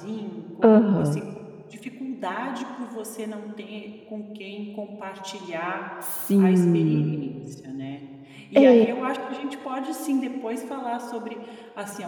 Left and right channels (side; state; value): both; identical; correlation 1.00